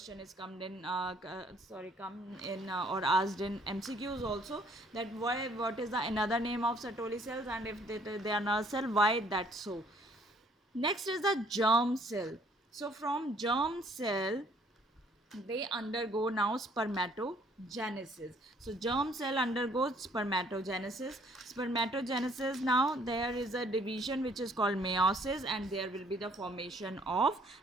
is come in or asked in MCQs also, that what is the another name of Sertoli cells, and if they are nurse cell, why that so. Next is the germ cell. So from germ cell, they undergo now spermatogenesis. So germ cell undergoes spermatogenesis. Now there is a division which is called meiosis, and there will be the formation of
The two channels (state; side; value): normal; both; correlation 0.61